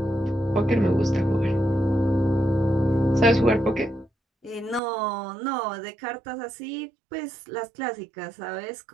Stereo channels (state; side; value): drops out; left; at 4.8 s